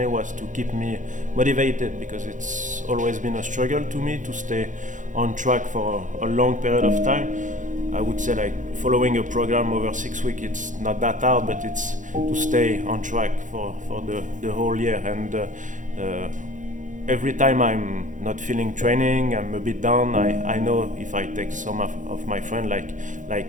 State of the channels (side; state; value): left; late; 0.37 ms